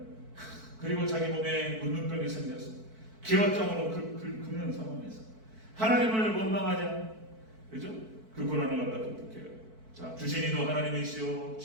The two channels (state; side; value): late; left; 4.5 ms